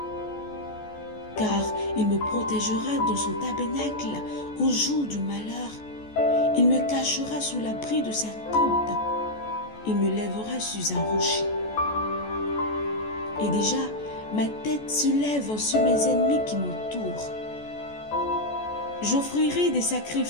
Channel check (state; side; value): late; right; 14 ms